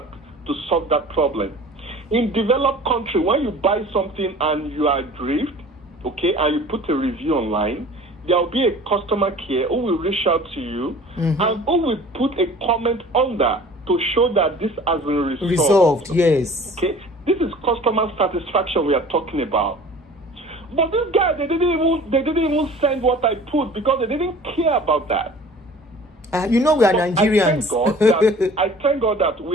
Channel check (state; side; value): normal; both; correlation 0.45